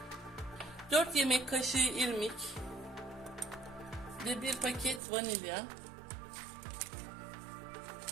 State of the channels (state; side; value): drops out; left; at 5.0 s